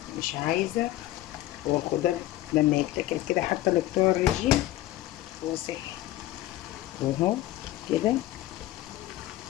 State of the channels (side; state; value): right; quieter; 15.4 dB